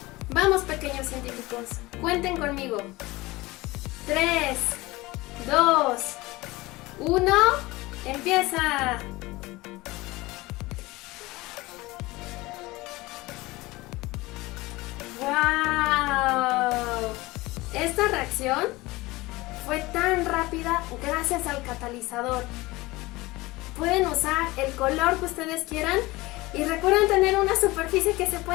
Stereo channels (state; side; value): quieter; right; 20.7 dB